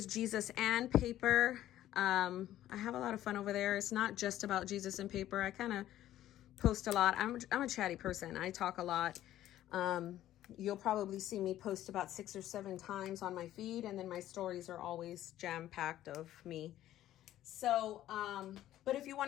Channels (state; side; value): quieter; right; 13.2 dB